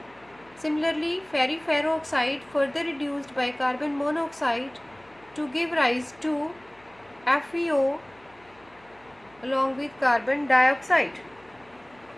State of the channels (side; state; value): left; noise; hum, 29 dB below the sound